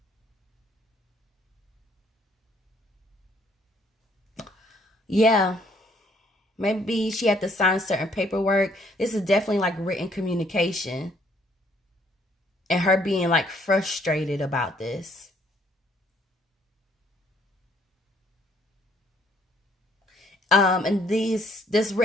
Yeah. Maybe she had to sign certain paperwork. This is definitely like written communication. And her being like frustrated about this. And this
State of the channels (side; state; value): both; normal; correlation 0.65